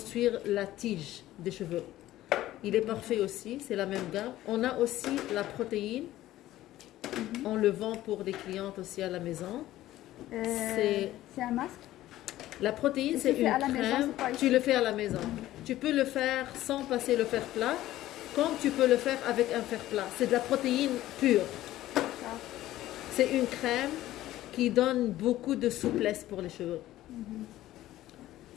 la tige des cheveux. Il est parfait aussi, c'est la même gamme. On a aussi la protéine. On le vend pour les clientes aussi à la maison. C'est un masque. La protéine, Et c'est tu fais une à la maison, crème. c'est pas ici. Tu le fais à la maison. Tu peux le faire sans passer le fer plat, comme tu peux le faire avec un fer plat. C'est de la protéine pure. D'accord. C'est une crème qui donne beaucoup de souplesse pour les cheveux.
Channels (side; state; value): right; quieter; 14.8 dB